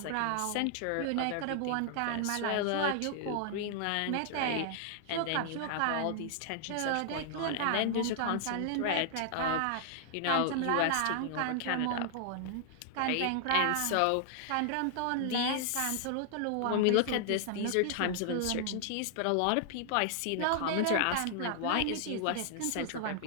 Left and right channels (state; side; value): different; both; correlation 0.00